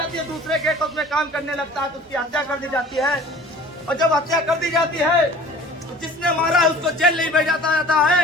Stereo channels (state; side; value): normal; both; correlation 0.46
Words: है। दूसरे गेट हाउस में काम करने लगता है तो उसकी हत्या कर दी जाती है। और जब हत्या कर दी जाती है तो जिसने मारा है उसको जेल नहीं भेजा जाता है,